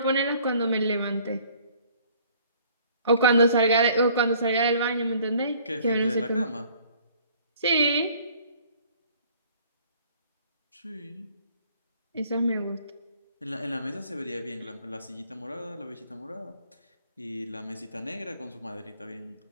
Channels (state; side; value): inverted; both; correlation -0.56